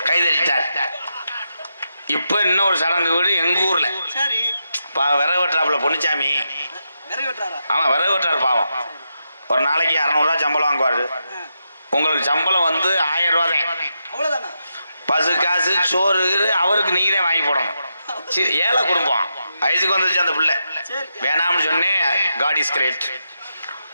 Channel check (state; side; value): inverted; both; correlation -0.85